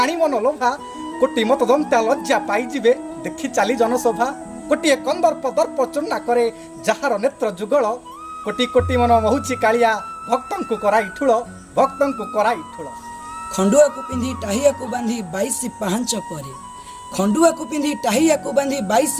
मन लोभा कोटी मतदंता लज्जा पाइजिबे देखि चाली जनसभा कोटी कंदर्प दर्प चूर्णा करे जहार नेत्र जुगल कोटी कोटी मन महुची कालिया भक्तंकु कराई ठुळ भक्तंकु कराई ठुळ खंडुआ को पिंधि टाहिया को बांधी 22 पाहांच परे खंडुआ को पिंधि टाहिया को बांधी 22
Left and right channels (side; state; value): both; identical; correlation 1.00